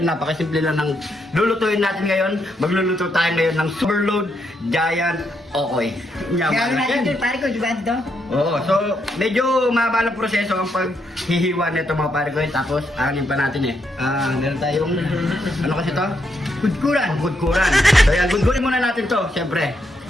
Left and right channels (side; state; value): both; normal; correlation 0.78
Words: napakasimple lang ng lulutuin natin ngayon. Magluluto tayo ngayon ng Overload Giant Okoy. Kaya natin ito, pare ko, di ba ito? Oo, so medyo mahaba ng proseso ang paghihiwa nito mga pare ko. Tapos anin pa natin meron tayong, ano kasi to? Gudkuran. So yan, gudkurin muna natin to, syempre.